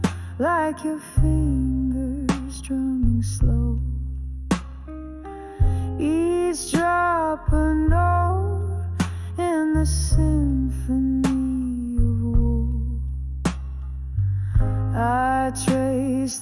like your fingers drumming slow. Each drop a note in the symphony of woe. I trace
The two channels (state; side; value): identical; both; correlation 1.00